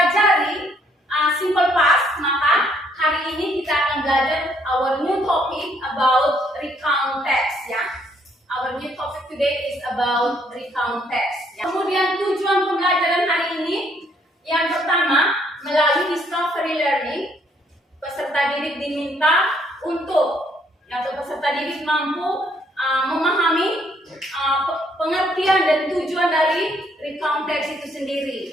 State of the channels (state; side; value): normal; both; correlation 0.68